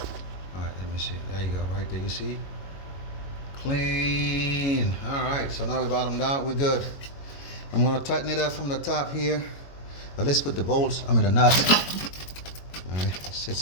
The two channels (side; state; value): right; late; 21 ms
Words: Alright, let me see. There you go, right there, you see? Clean. Alright, so now we bottomed out, we're good. I'm gonna tighten it up from the top here. But let's put the bolts, the nuts. Alright, it's